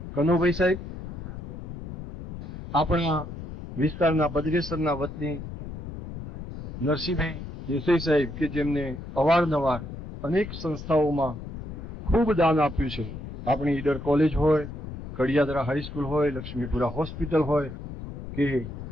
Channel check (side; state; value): left; noise; rumble, 9 dB below the sound